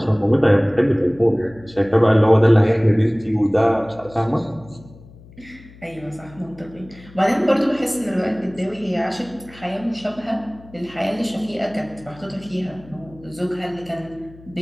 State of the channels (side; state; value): left; noise; hum, 22 dB below the sound